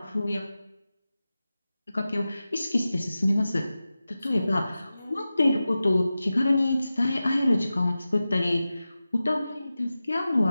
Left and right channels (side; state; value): both; inverted; correlation -0.94